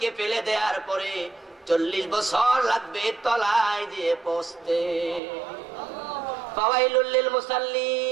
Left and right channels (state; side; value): drops out; left; at 5.2 s